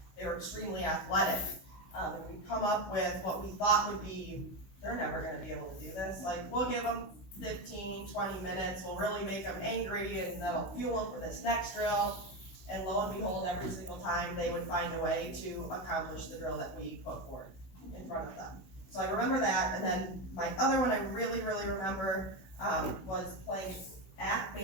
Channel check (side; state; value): right; late; 16 ms